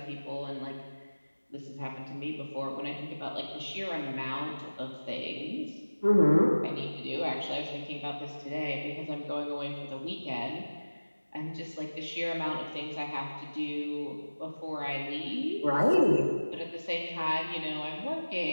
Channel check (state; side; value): inverted; both; correlation -1.00